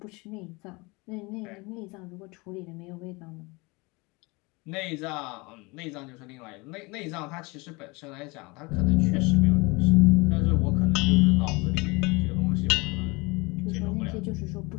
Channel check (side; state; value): right; quieter; 26.0 dB